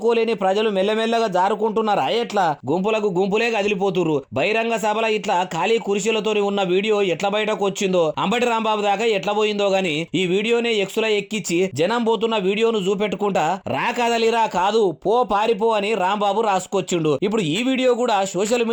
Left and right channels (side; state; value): both; identical; correlation 1.00